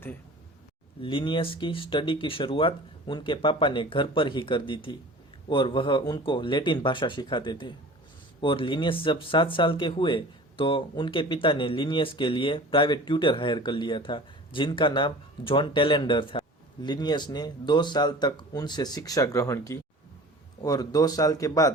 लिनियस की स्टडी की शुरुआत उनके पापा ने घर पर ही कर दी थी और वह उनको लैटिन भाषा सिखाते थे। और लिनियस जब 7 साल के हुए तो उनके पिता ने लिनियस के लिए प्राइवेट ट्यूटर हायर कर लिया था जिनका नाम जॉन टेलेंडर था। लिनियस ने 2 साल तक उनसे शिक्षा ग्रहण की और 2 साल के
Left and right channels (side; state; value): both; normal; correlation 0.41